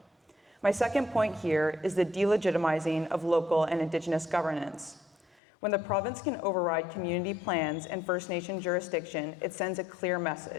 My second point here is the delegitimizing of local and Indigenous governance. When the province can override community plans and First Nation jurisdiction, it sends a clear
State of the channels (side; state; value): right; drops out; at 5.4 s